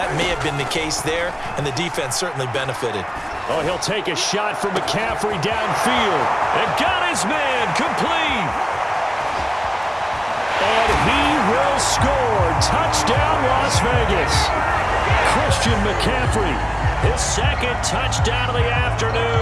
may have been the case there, and the defense certainly benefited. Oh, he'll take a shot from McCaffrey downfield. And got his man complete. And he will score. Touchdown, Las Vegas. Christian McCaffrey, his second touchdown of the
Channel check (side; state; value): both; identical; correlation 1.00